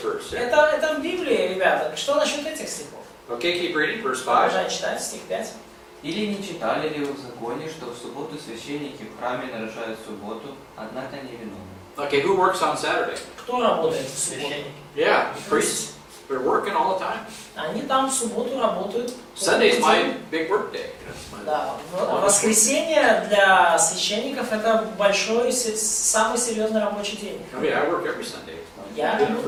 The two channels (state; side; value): identical; both; correlation 1.00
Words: verse? Это в Библии, ребята. Что насчет этих стихов? Okay, keep reading, verse 5. Продолжай читать, стих 5. Или не читали ли вы в законе, что в субботу священники в храме нарушают субботу, однако не виновны? Okay, who works on Saturday? Кто работает в субботу? Yeah, priests. They're working all the time. Они там в субботу работают. Sunday's my big work day. Да, воскресенье для священников это большой, самый серьезный рабочий день. I mean, I work every Sunday. Я I've done it